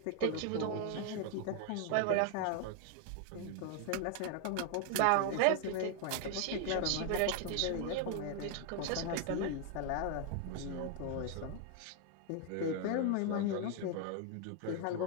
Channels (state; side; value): different; both; correlation 0.00